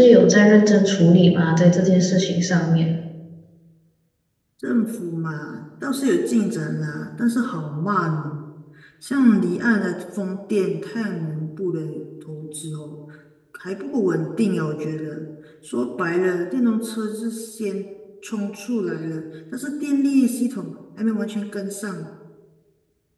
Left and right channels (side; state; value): both; identical; correlation 1.00